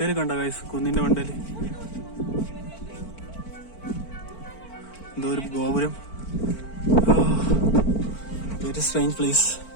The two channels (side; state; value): right; late; 4.5 ms